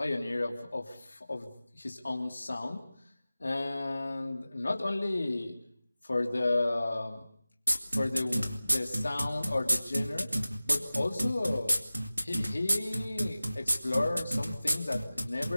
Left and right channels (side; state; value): both; inverted; correlation -0.97